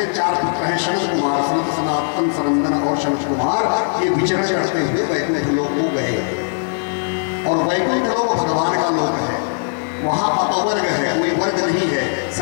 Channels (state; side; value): silent; right; 66 dB below the other